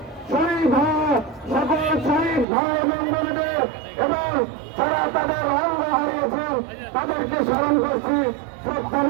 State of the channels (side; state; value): left; drops out; at 2.5 s